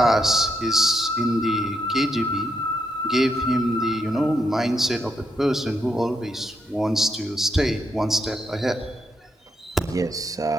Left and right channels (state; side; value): normal; both; correlation 0.79